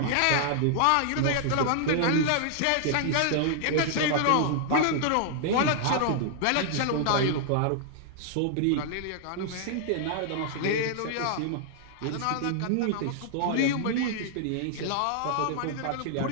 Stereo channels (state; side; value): different; both; correlation -0.01